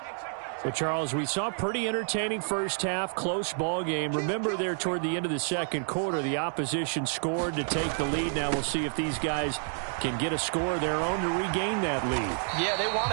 So, Charles, we saw a pretty entertaining first half, close ball game. Remember there toward the end of the second quarter, the opposition scored to take the lead. Now we'll see if these guys can get a score of their own to regain that lead. Yeah, they want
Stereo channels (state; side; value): silent; left; 58 dB below the other